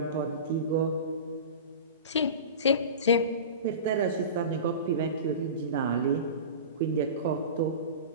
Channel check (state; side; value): inverted; both; correlation -0.30